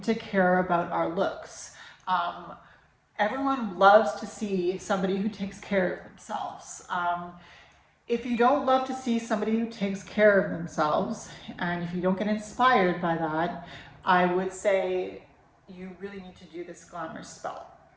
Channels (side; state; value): both; identical; correlation 1.00